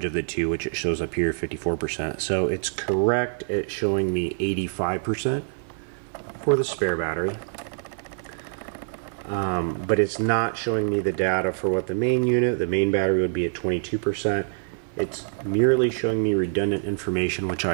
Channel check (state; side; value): silent; left; 61 dB below the other